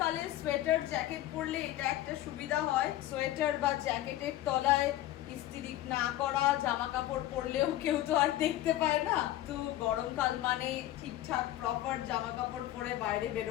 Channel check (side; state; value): right; quieter; 14.3 dB